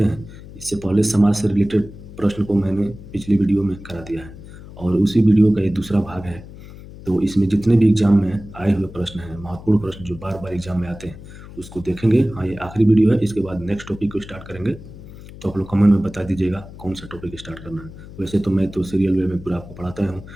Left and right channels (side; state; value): left; noise; hum, 16 dB below the sound